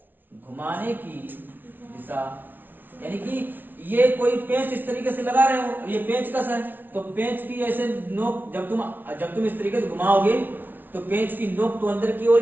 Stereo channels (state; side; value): late; left; 0.089 ms